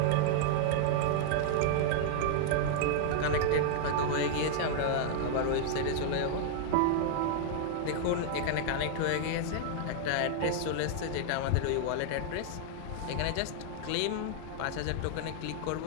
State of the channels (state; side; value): different; both; correlation -0.01